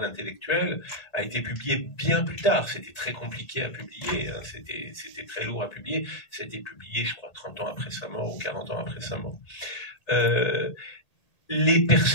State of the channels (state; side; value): late; right; 1.8 ms